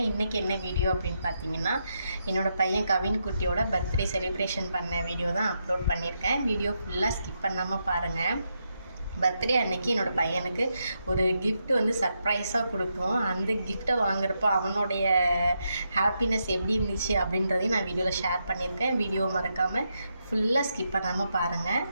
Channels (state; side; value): inverted; both; correlation -0.83